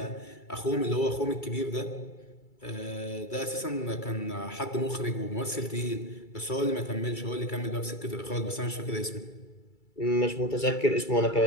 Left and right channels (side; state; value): right; late; 2.3 ms